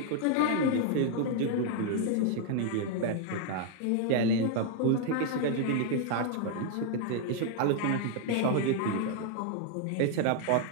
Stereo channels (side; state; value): both; different; correlation 0.00